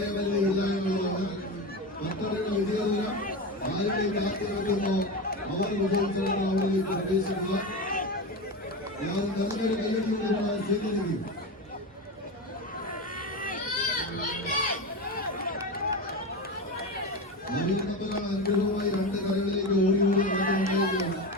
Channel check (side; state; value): both; normal; correlation 0.21